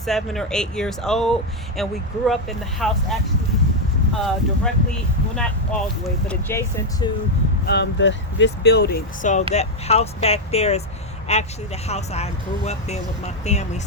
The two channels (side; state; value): both; normal; correlation 0.02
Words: or 8 years old. And we grew up in the house actually directly, well, not all the way, but adjacent to this building. So that house back there is actually the house I grew up in with my family.